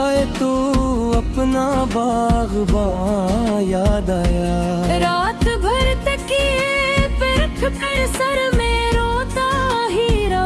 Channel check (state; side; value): identical; both; correlation 1.00